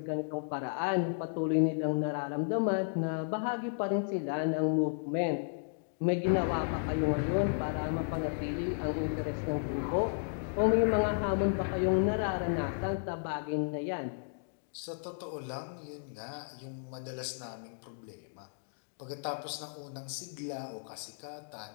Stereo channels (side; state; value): right; silent; digital silence